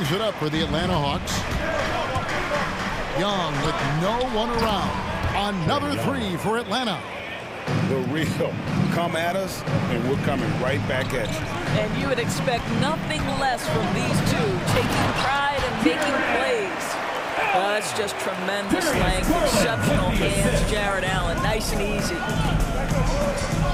it up for the Atlanta Hawks. Young with no one around. Another three for Atlanta. The real come at us, and we're coming right back at you. And you would expect nothing less from these two, taking pride and making plays. That's just tremendous length, exceptional hands, Jared Allen, nice and easy.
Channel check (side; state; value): both; identical; correlation 1.00